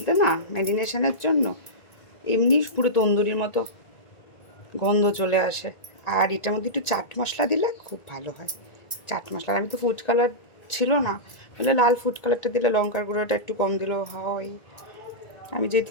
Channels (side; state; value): right; late; 1.9 ms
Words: না ম্যারিনেশনের জন্য এমনি পুরো তন্দুরির মতো গন্ধ চলে আসে। আর এটার মধ্যে একটু চাট মশলা দিলে খুব ভালো হয়। চাট মশলা, আমি তো ফুড কালার ছিল না, বলে লাল ফুড কালারটা দিলে লঙ্কার গুঁড়োটা একটু কম দিলেও হয়। আমি যেহেতু